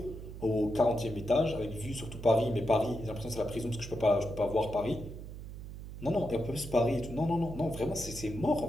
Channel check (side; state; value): right; noise; hum, 11 dB below the sound